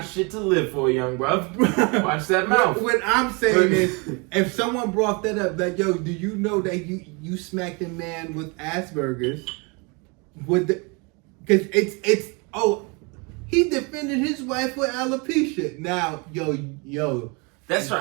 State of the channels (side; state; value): left; quieter; 30.7 dB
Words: shit to live for, young bruv. Watch that mouth. What I'm saying is, if someone brought that up, like, yo, do you know that you smacked a man with Asperger's? Because he defended his wife with alopecia. Now, yo. That's